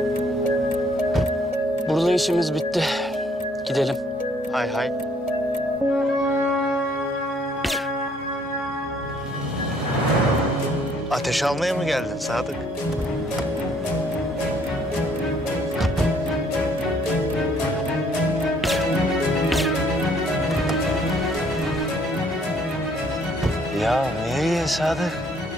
Burada işimiz bitti. Gidelim. Hay hay. Ateş almaya mı geldin Sadık? Ya nereye Sadık?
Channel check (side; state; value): both; normal; correlation 0.64